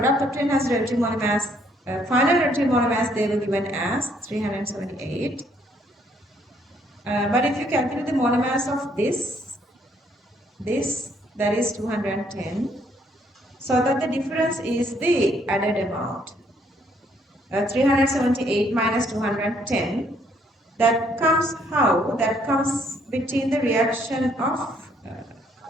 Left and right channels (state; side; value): normal; both; correlation 0.67